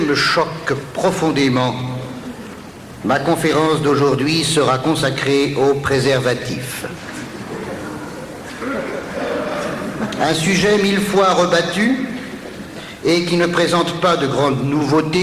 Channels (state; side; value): identical; both; correlation 1.00